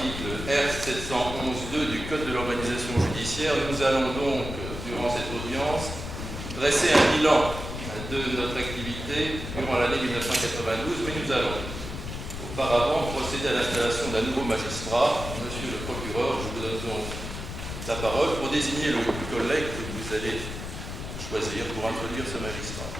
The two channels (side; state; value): left; noise; rumble, 7 dB below the sound